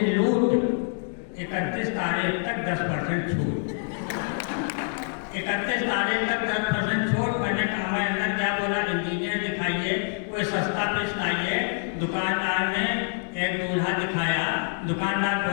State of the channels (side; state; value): right; silent; 61 dB below the other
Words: लूट, 31 तारीख तक 10% छूट। 31 तारीख तक 10% छूट। मैंने कहा मैं अंदर क्या बोला, इंजीनियर दिखाइए, कोई सस्ता पीस लाइए। दुकानदार ने एक दूल्हा दिखाया। दुकानदार